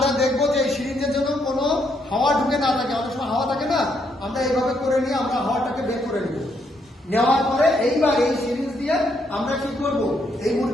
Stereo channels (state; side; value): normal; both; correlation 0.75